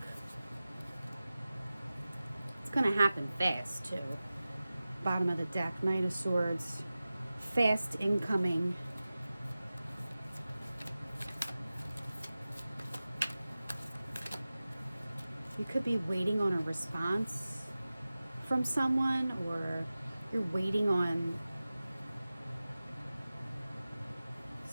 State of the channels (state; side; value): inverted; both; correlation -0.96